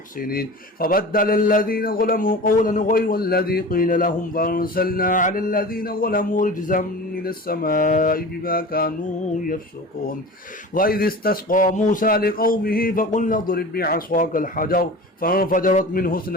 فبدل الذين ظلموا قولا غير الذي قيل لهم فأرسلنا على الذين ظلموا رجزا من السماء بما كانوا يفسقون وإذ استسقى موسى لقومه فقلنا اضرب بعصاك الحجر فانفجرت منه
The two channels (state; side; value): normal; both; correlation 0.35